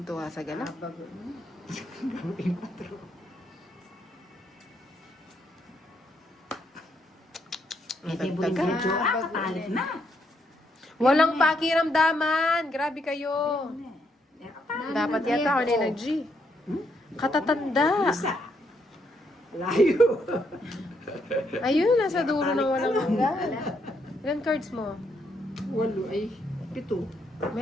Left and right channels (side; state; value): both; normal; correlation 0.75